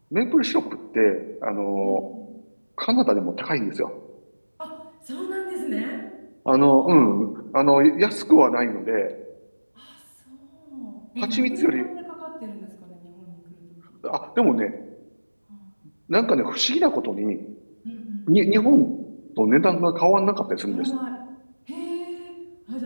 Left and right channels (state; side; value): inverted; both; correlation -1.00